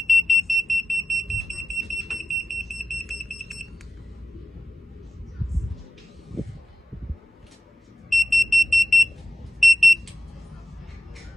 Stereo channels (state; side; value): normal; both; correlation 0.94